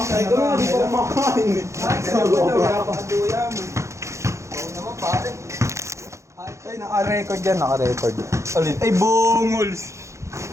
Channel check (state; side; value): late; left; 0.14 ms